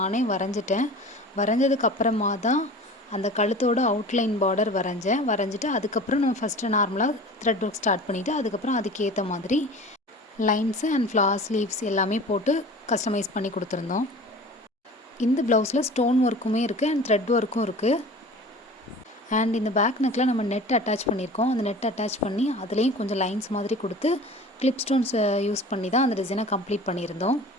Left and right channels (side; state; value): both; normal; correlation 0.40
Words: வரைஞ்சிட்டேன். வரைஞ்சதுக்கப்புறமா தான் அந்த கழுத்தோட அவுட்லைன் பார்டர் வரைஞ்சிட்டு அதுக்கப்புறம் நம்ம ஃபஸ்ட்டு நார்மலாக த்ரெட் ஒர்க் ஸ்டார்ட் பண்ணிவிட்டு அதுக்கப்புறம் அதுக்கேற்ற மாதிரி லைன்ஸு அண்ட் ஃப்ளார்ஸ் லீவ்ஸ் எல்லாமே போட்டு கஸ்டமைஸ் பண்ணி கொடுத்துருந்தோம். இந்த ப்ளவுஸில் ஸ்டோன் ஒர்க்குமே இருக்குது அண்ட் த்ரெட் ஒர்க்கும் இருக்குது. அண்ட் இந்த பேக் நெக்கில் நம்ம நெட் அட்டாச் பண்ணியிருக்கோம். அந்த நெட் அட்டாச் பண்ணி அதுலேயும் கொஞ்சம் லைன்ஸ் மாதிரி கொடுத்து கிளிப் ஸ்டோன்ஸ் யூஸ் பண்ணி தான் அந்த டிசைனை கம்ப்ளீட் பண்ணியிருந்தோம்.